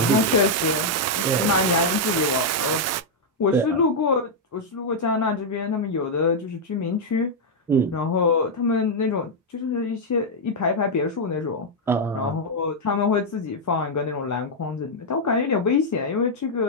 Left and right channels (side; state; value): both; normal; correlation -0.03